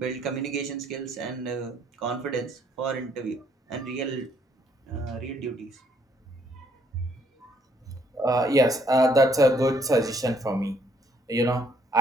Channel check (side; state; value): both; normal; correlation 0.67